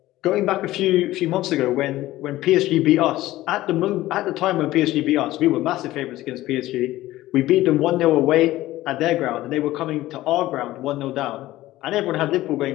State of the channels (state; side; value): quieter; right; 16.2 dB